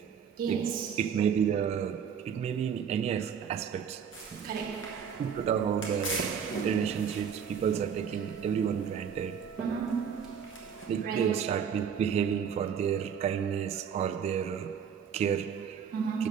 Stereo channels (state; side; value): quieter; left; 7.5 dB